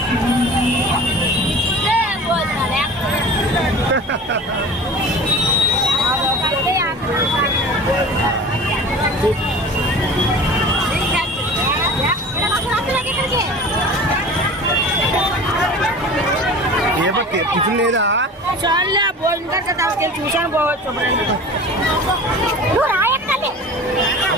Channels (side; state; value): both; normal; correlation 0.38